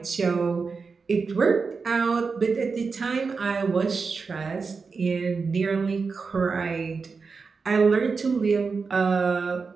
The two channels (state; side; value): quieter; left; 4.8 dB